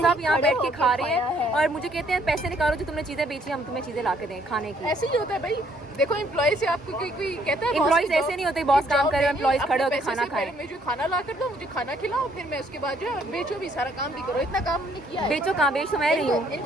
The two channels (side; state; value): both; normal; correlation 0.66